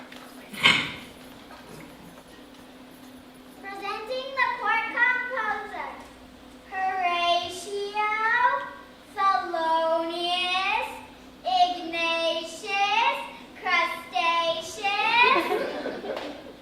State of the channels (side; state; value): both; identical; correlation 1.00